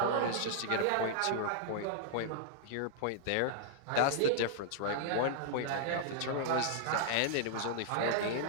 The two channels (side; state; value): both; different; correlation -0.01